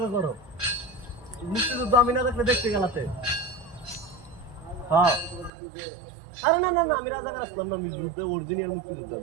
করো মুক্তিযুদ্ধ আমি না দেখলে দেখতে গেলাতে হ্যাঁ আরে না না না আমি রাজাকার আসলাম না আমি যুদ্ধ অরিজিনাল মুক্তিযুদ্ধ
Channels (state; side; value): drops out; left; at 5.5 s